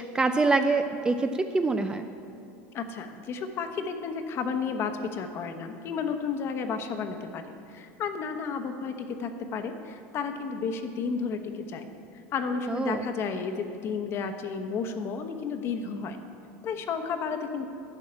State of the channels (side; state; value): both; normal; correlation 0.56